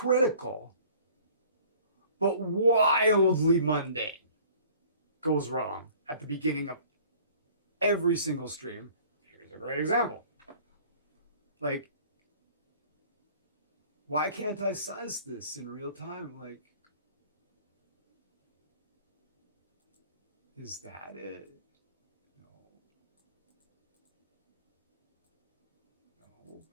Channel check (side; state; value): both; inverted; correlation -0.51